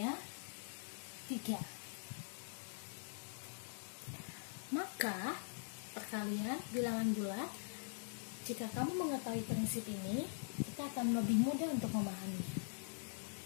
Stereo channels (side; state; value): right; silent; digital silence